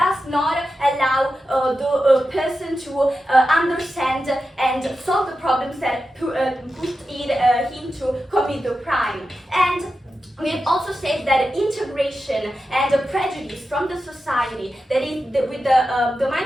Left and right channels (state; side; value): normal; both; correlation 0.91